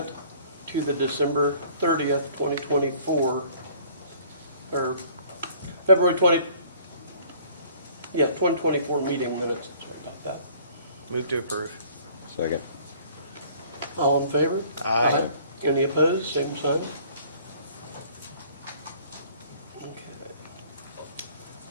to the December 30th, 2024, or February 2024 meeting minutes. Sorry about that. Move to approve. Second. All in favor? Aye. Any opposed? Same sign.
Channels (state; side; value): inverted; both; correlation -0.54